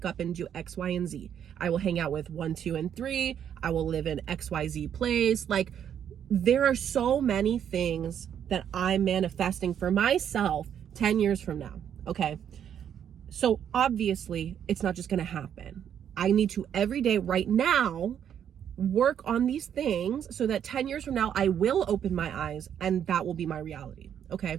up and do X, Y, and Z. I will hang out with 1, 2, and 3. I will live in XYZ place. Like, there are so many things that I'm manifesting for myself 10 years from now. Okay. So obviously it's not just going to happen. I need to every day right now work on these things so that 10 years from now, I will open my eyes and that will be my reality.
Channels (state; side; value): quieter; left; 9.1 dB